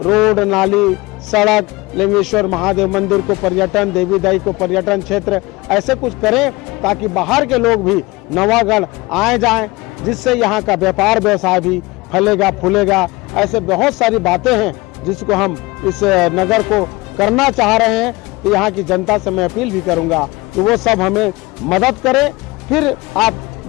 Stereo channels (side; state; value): right; quieter; 22.4 dB